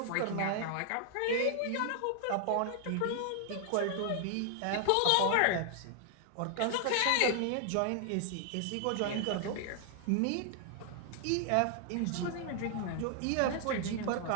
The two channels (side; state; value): both; different; correlation 0.00